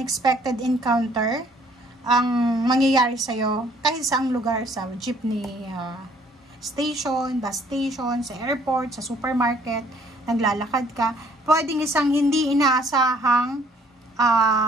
encounter ang mangyayari sa'yo kahit saang lugar, sa jeepney station, bus station, sa airport, sa supermarket, naglalakad ka. Pwedeng isang hindi inaasahang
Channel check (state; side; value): normal; both; correlation 0.61